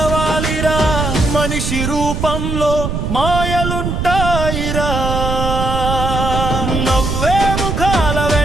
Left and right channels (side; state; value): right; noise; rumble, 2 dB below the sound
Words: మనిషి రూపంలో మాయలుంటాయిరా. నవ్వే ముఖాల